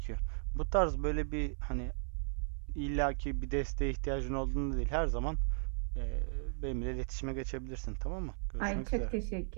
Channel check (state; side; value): silent; left; 54 dB below the other